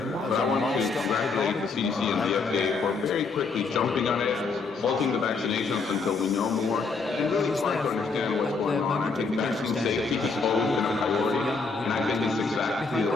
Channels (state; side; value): quieter; right; 4.4 dB